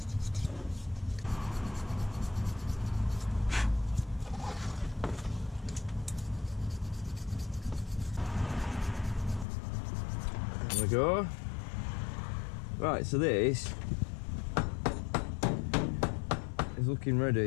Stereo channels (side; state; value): right; drops out; at 9.5 s